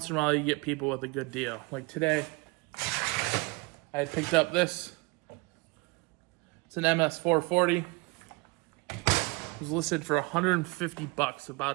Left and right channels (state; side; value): quieter; left; 26.7 dB